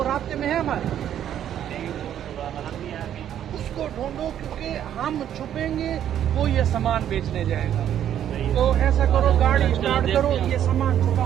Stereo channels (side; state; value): left; quieter; 10.4 dB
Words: रास्ते में है हमारे, उसको ढूंढो, क्योंकि हम छुपेंगे वो ये सामान बेचने जाएगा। तो ऐसा करो, गाड़ी स्टार्ट करो, ये सामान